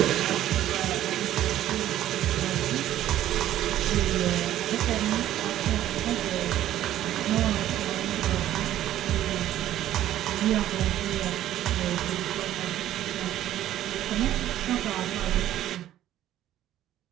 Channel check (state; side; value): quieter; left; 12.7 dB